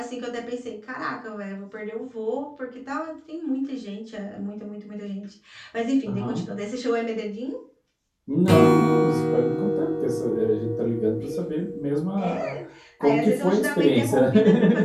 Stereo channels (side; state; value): both; identical; correlation 1.00